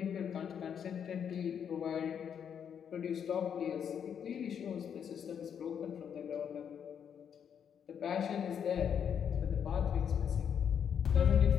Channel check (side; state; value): right; quieter; 8.0 dB